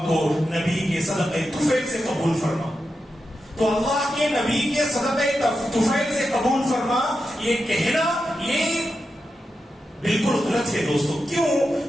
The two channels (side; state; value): both; normal; correlation 0.89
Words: کو نبی کے صدقہ طفیل سے قبول فرما. تو اللہ کے نبی کے صدقہ طفیل سے قبول فرما، یہ کہنا یہ بالکل غلط ہے دوستو. کیوں؟